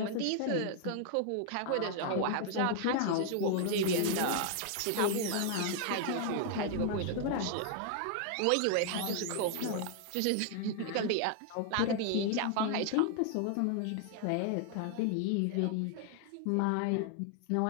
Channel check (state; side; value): different; both; correlation 0.00